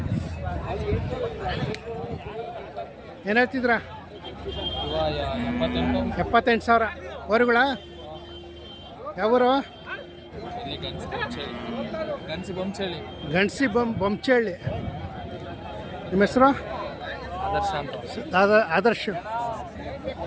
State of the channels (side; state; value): both; identical; correlation 1.00